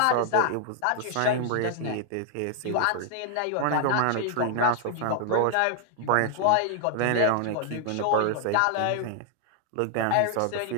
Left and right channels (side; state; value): both; different; correlation 0.00